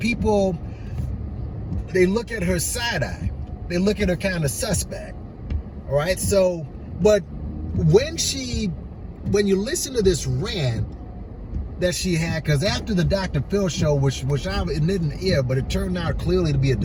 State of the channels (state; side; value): identical; both; correlation 1.00